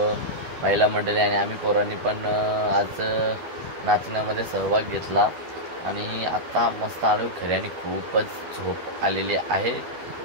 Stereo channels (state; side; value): late; left; 12 ms